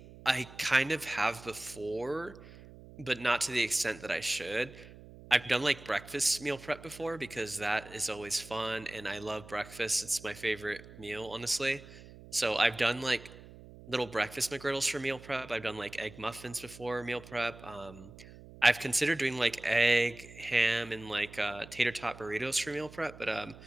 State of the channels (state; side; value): noise; right; hum, 18 dB below the sound